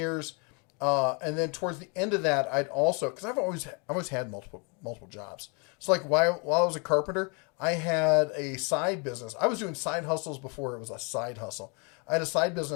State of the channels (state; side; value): quieter; right; 33.5 dB